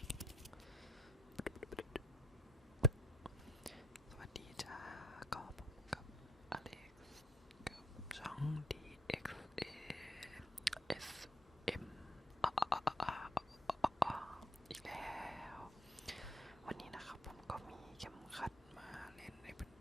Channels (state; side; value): normal; both; correlation 0.68